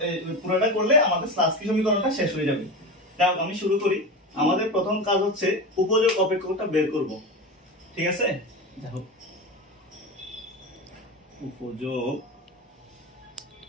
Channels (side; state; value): both; normal; correlation 0.24